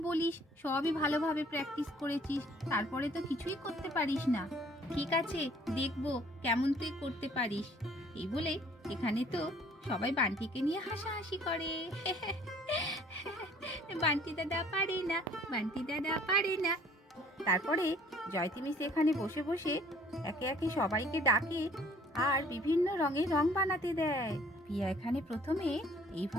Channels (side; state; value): both; normal; correlation 0.56